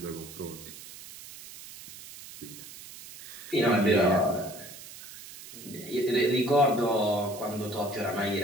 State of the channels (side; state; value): right; noise; hiss, 15 dB below the sound